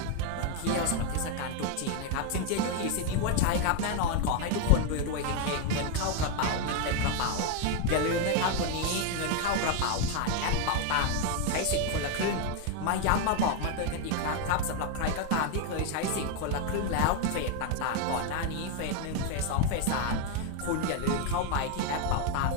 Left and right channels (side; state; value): both; different; correlation 0.01